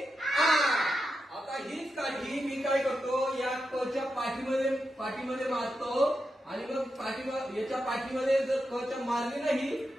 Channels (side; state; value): both; normal; correlation 0.88